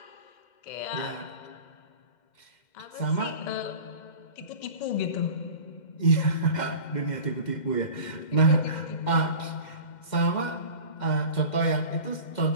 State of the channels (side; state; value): right; late; 2.1 ms